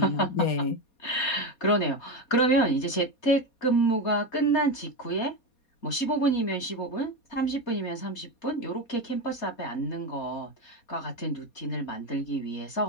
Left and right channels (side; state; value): right; late; 4.2 ms